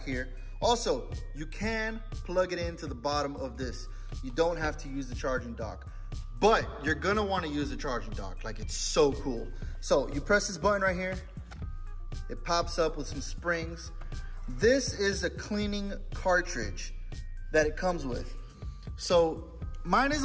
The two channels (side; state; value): both; identical; correlation 1.00